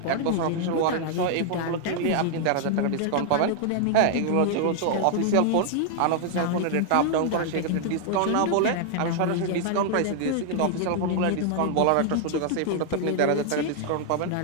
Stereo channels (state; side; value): different; both; correlation 0.00